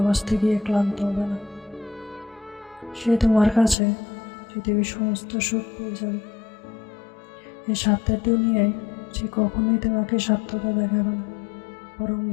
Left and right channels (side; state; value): right; drops out; at 3.8 s